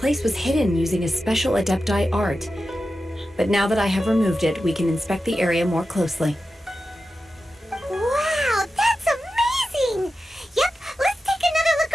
was hidden using a special Adepti art. But now that I have removed it, we can inspect the area more closely. Wow, that's amazing! Yep, let's take another look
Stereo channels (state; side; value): normal; both; correlation 0.92